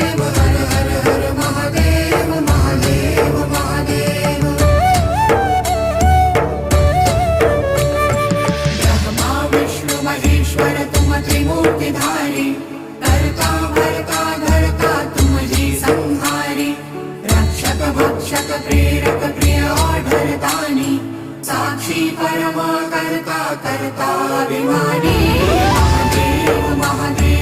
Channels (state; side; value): identical; both; correlation 1.00